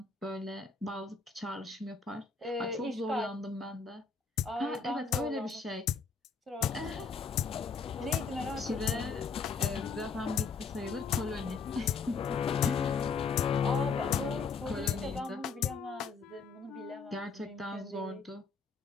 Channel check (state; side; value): quieter; right; 5.0 dB